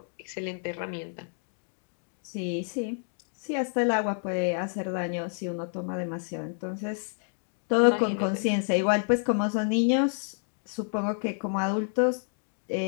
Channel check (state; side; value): silent; right; digital silence